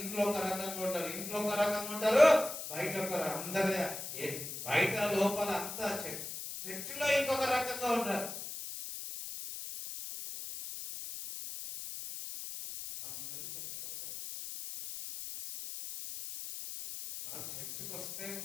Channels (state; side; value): noise; left; hiss, 8 dB below the sound